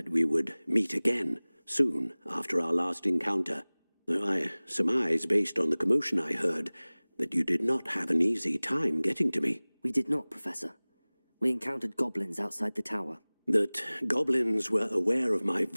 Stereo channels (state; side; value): inverted; both; correlation -1.00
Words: we would meet again soon after our last encounter, though I surmise, based on the commotion I heard, that you did not have an easy time getting to me. We did not, Professor. We encountered goblins outside the tower. That goblins were aware of my